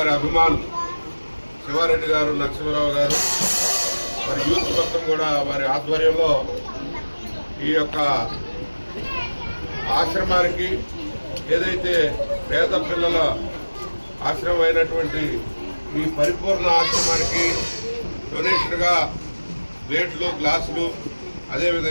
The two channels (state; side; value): inverted; both; correlation -1.00